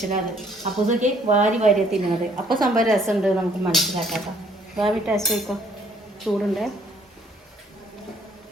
അപ്പോൾ ഇതൊക്കെ വാരി വാരി തിന്നുന്നത്. അപ്പോൾ സംഭവം രസമുണ്ട്, നമുക്ക് മനസ്സിലാക്കാം. ഭാവി ടേസ്റ്റ് വയ്ക്കോ, ചൂടുണ്ട്.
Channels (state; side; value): normal; both; correlation 0.63